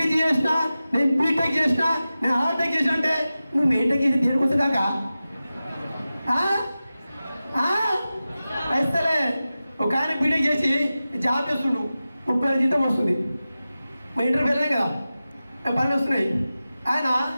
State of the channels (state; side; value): inverted; both; correlation -0.95